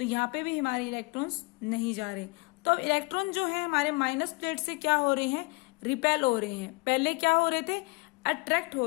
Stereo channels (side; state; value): right; quieter; 27.4 dB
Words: यहाँ पे भी हमारे इलेक्ट्रॉन्स नहीं जा रहे। तो अब इलेक्ट्रॉन जो है हमारे माइनस प्लेट से क्या हो रहे हैं, रिपेल हो रहे हैं। पहले क्या हो रहे थे, अट्रैक्ट हो